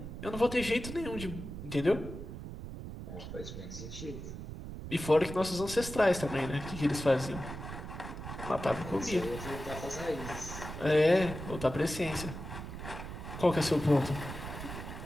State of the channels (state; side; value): noise; right; rumble, 9 dB below the sound